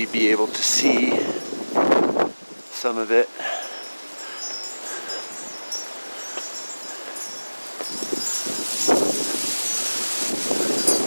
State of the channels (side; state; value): both; inverted; correlation -1.00